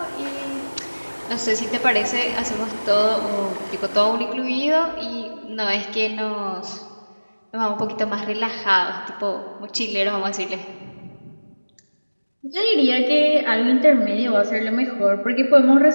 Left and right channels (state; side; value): inverted; both; correlation -1.00